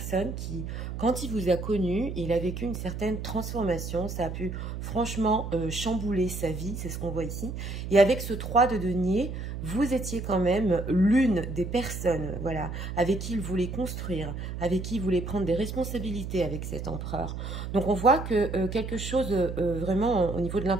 qui, quand il vous a connu, il a vécu une certaine transformation. Ça a pu, franchement, chambouler sa vie, c'est ce qu'on voit ici. Et avec ce 3 de denier, vous étiez quand même l'une des personnes, voilà, avec qui il voulait construire, avec qui il voulait prendre des responsabilités avec cet empereur. Donc, on voit que quelque chose, vraiment, au niveau de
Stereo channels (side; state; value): right; noise; hum, 6 dB below the sound